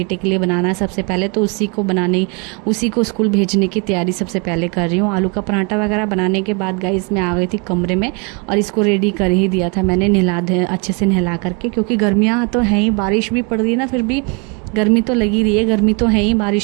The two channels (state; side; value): quieter; left; 33.0 dB